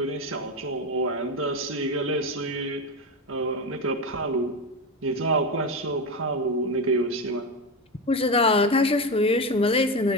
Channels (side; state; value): both; normal; correlation 0.17